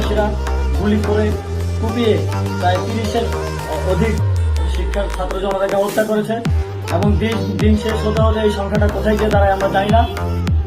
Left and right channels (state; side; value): identical; both; correlation 1.00